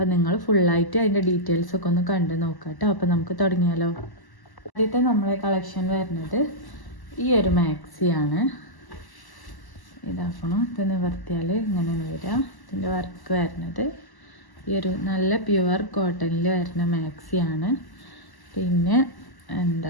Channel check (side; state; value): right; late; 1.0 ms